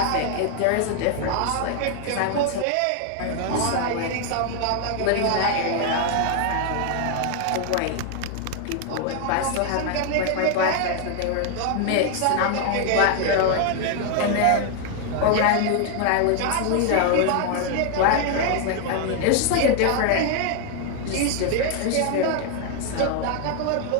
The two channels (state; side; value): different; both; correlation 0.00